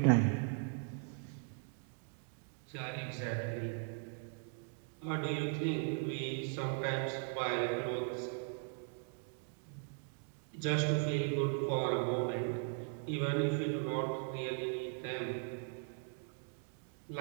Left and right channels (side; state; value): left; silent; 52 dB below the other